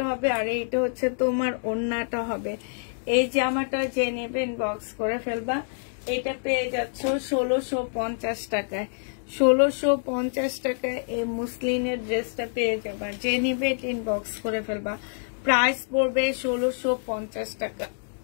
হবে আর এইটা হচ্ছে তোমার ওড়নাটা হবে। এই জামাটা যে নেবেন বক্স করে ফেলবা। এটা পেয়ে যাচ্ছ 1650 টাকায়। 1650 টাকায় এই মুসলিনের ড্রেসটা পেয়ে যাবা। যে নিবে ইনবক্স করে ফেলবা। প্রাইস পড়বে 1650 টাকা।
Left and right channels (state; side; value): silent; right; digital silence